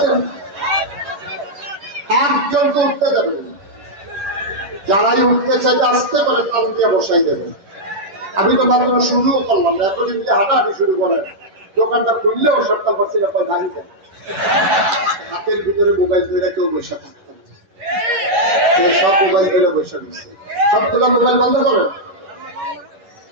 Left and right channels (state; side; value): late; left; 11 ms